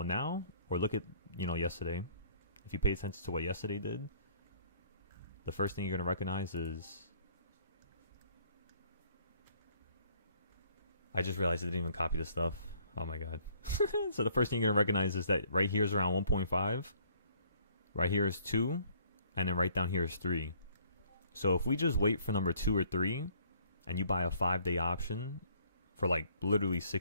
now, or look at, yesterday. If you pay attention to what yesterday did, the first thing you're going to recognize is... I just realized I didn't even copy this stuff. Oh my god. So the first thing you're going to recognize is that right here is around 1.5. Right here is 2. And then right down here is 3. So if we just wait for number 2 or 3, and you buy a 5-day option for like literally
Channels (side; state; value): both; inverted; correlation -0.61